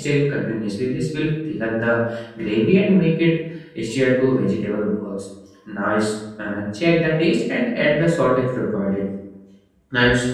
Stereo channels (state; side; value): identical; both; correlation 1.00